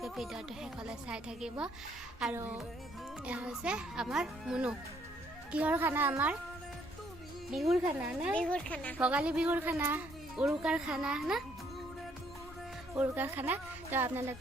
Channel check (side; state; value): both; normal; correlation 0.67